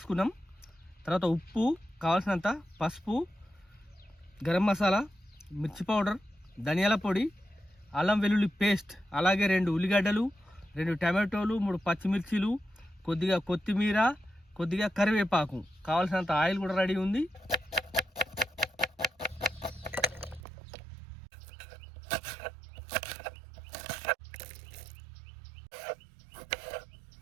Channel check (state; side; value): drops out; left; at 20.4 s